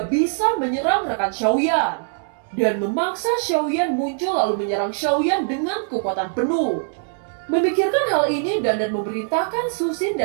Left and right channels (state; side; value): silent; left; digital silence